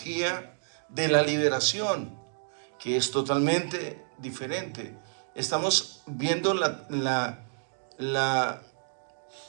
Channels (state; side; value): silent; left; digital silence